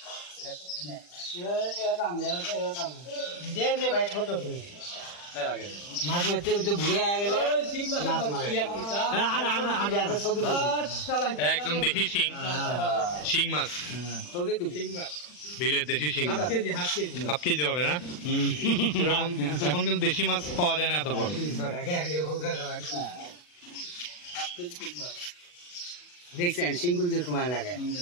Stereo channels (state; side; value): late; right; 40 ms